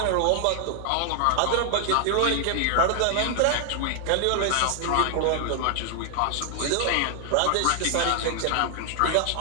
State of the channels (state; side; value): different; both; correlation 0.00